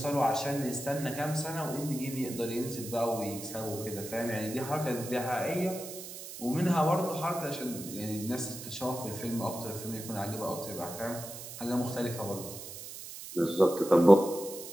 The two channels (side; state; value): right; noise; hiss, 11 dB below the sound